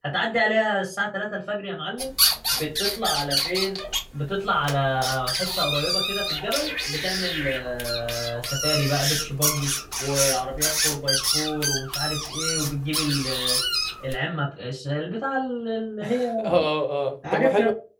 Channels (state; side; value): identical; both; correlation 1.00